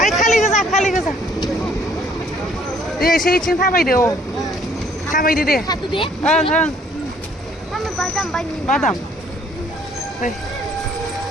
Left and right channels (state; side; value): normal; both; correlation 0.61